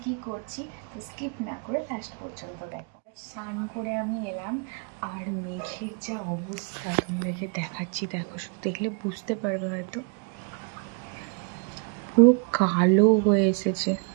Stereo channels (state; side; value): quieter; left; 37.6 dB